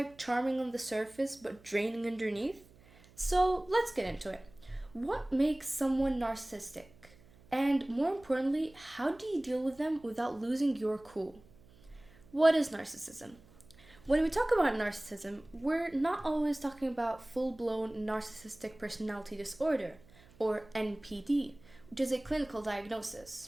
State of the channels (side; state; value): right; noise; hum, 25 dB below the sound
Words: charming on the surface but draining underneath. So let's get into it. What makes someone narcissistic? And more importantly, how do you deal with them without losing your cool? What is narcissism? When we talk about narcissism, we're not always talking about full blown narcissistic personality disorder, or NPD, which is a clinical diagnosis.